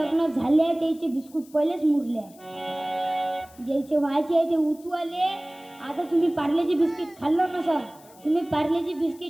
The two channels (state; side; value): noise; left; hiss, 25 dB below the sound